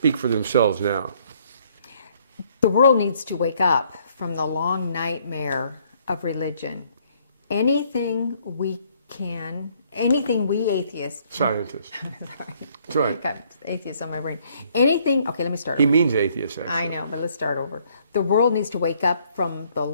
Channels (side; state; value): both; inverted; correlation -0.65